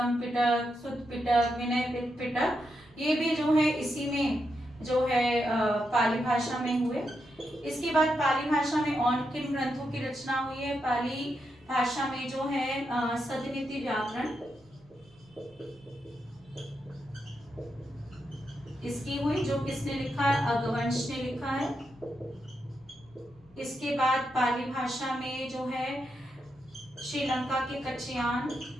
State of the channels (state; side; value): noise; right; hum, 29 dB below the sound